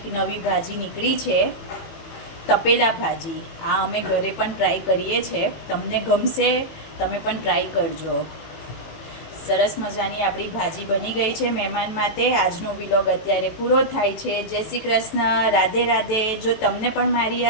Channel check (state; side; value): late; right; 18 ms